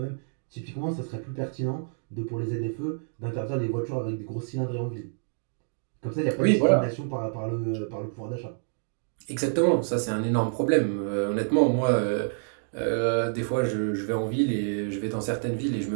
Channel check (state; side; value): silent; left; digital silence